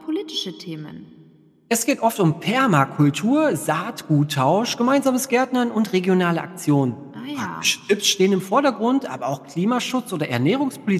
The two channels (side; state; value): both; identical; correlation 1.00